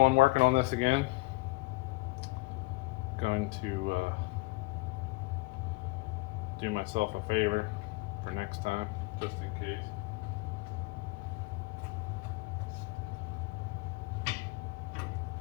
one working on this again. Going to do myself a favor for next time, just in case.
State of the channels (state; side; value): quieter; right; 23.6 dB